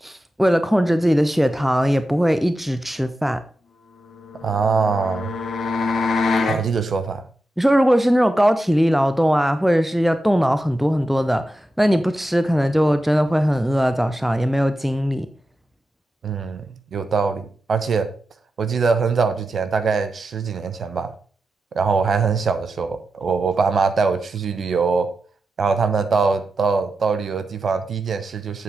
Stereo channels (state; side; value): normal; both; correlation 0.90